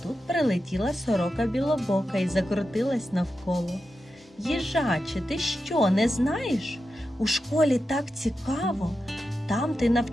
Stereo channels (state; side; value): normal; both; correlation 0.90